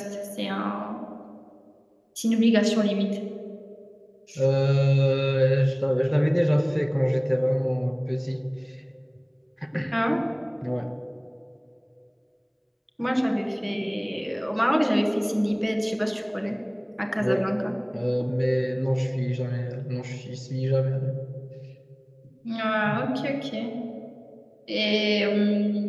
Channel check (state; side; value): identical; both; correlation 1.00